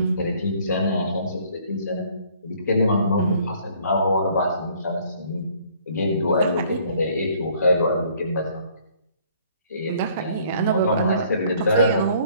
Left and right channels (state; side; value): inverted; both; correlation -0.59